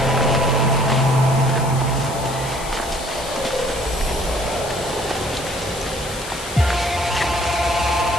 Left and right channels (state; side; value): noise; left; hiss, 12 dB below the sound